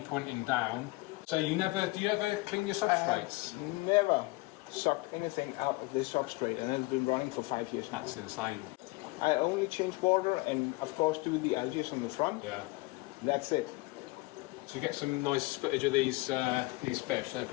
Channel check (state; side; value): quieter; right; 23.5 dB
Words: pointing down. So do you ever clean your substrates? Never sucked anything out of this substrate, and it's been running for 5 years now. That's insane. I only change water and of course do the algae on the front. Yeah. That's it. So you get some nice footage of these fish, they're